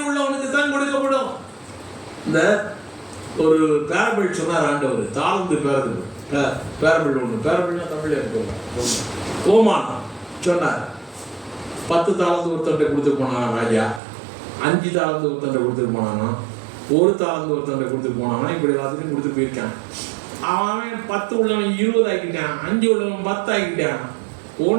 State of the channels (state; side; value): drops out; left; at 14.0 s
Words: உள்ளவனுக்கு தான் கொடுக்கப்படும். இந்த ஒரு பேரபிள் சொன்னார் ஆண்டவர், தாழ்ந்து பேரபிள் ஒன்று. பேரபிள்னா தமிழ்ல இருக்கு. ஓமானம் சொன்னார். 10 தாளந்து ஒருத்தன்ட்ட கொடுத்துட்டு போனானா ராஜா, 5 தாளந்து ஒருத்தன்ட்ட கொடுத்துட்டு போனானா, 1 தாளந்து ஒருத்தன்ட்ட கொடுத்துட்டு போனானா, இப்படி எல்லாத்துக்கும் கொடுத்து போயிருக்கான். அவன் 10 உள்ளவன் 20 ஆக்கிட்டான், 5 உள்ளவன் 10 ஆக்கிட்டான்.